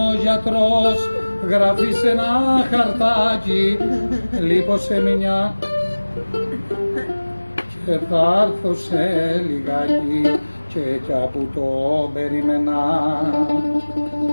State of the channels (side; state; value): both; inverted; correlation -1.00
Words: γιατρός. Γράφει σε ένα χαρτάκι, λείπω σε μια και θα έρθω σε λιγάκι. Και κι από το περίμενα